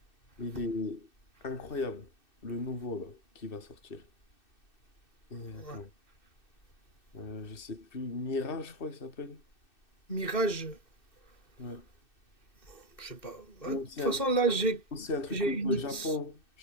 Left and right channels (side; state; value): right; late; 2.6 ms